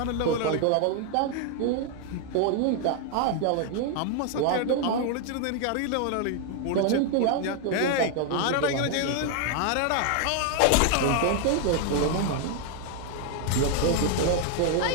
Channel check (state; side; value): different; both; correlation 0.00